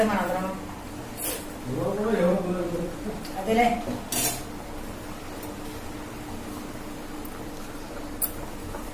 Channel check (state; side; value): identical; both; correlation 1.00